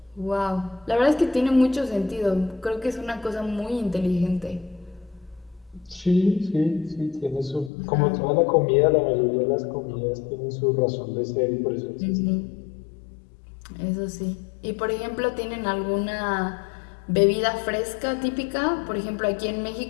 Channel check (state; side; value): drops out; right; at 7.7 s